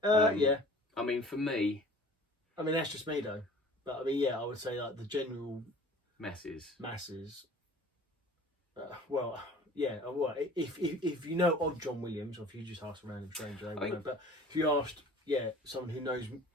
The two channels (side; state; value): both; normal; correlation 0.46